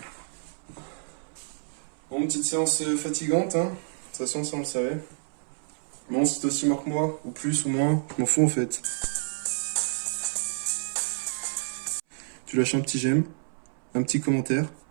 Bon, petite séance fatigante, hein. De toute façon, ça on le savait. Bon, c'est aussi mort que moi, ou plus ou moins, je m'en fous en fait. Tu lâches un petit j'aime, un petit commentaire,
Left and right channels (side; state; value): left; silent; 59 dB below the other